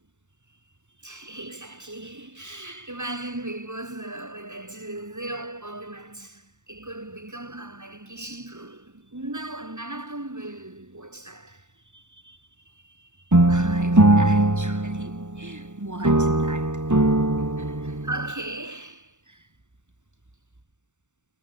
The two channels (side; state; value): left; late; 0.84 ms